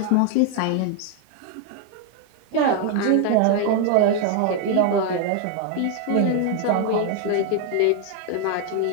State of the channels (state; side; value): different; both; correlation 0.01